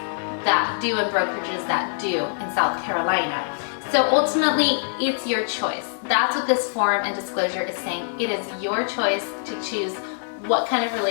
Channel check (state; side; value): silent; right; digital silence